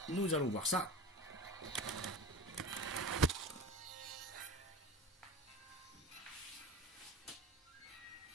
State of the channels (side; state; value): both; normal; correlation 0.33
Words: nous allons voir ça.